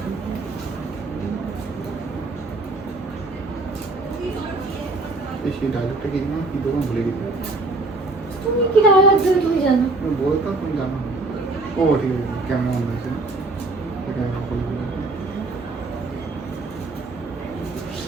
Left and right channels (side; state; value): left; quieter; 3.3 dB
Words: সেই ডায়লগটা কি না কি তখন ভুলে গেছি। তুমি কি ডায়লগ দেবে তুমি জানো বলতাম তুমি জানো। ও ঠিক আছে কেমন মনে হয়েছে